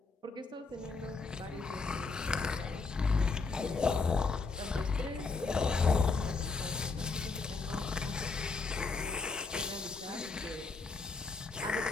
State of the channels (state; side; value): quieter; right; 4.2 dB